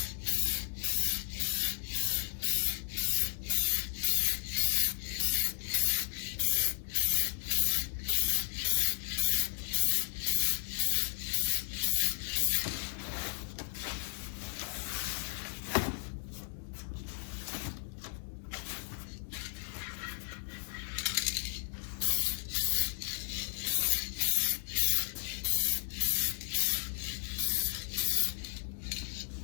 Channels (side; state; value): right; silent; digital silence